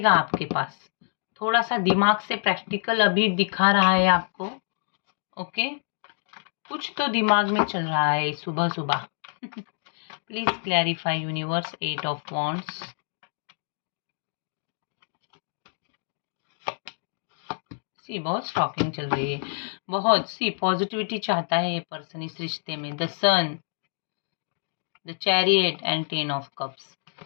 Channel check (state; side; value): silent; right; 60 dB below the other